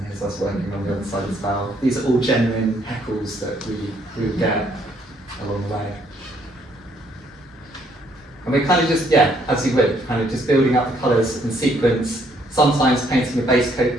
here's us working on the other side as well. These are all genuine heckles that we would get along the way. And we're kind of just, yeah, as you would, kind of just building up the colours in sequence, sometimes painting a base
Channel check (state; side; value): normal; both; correlation 0.67